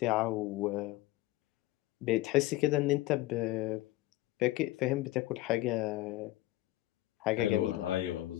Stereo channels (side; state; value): right; quieter; 17.1 dB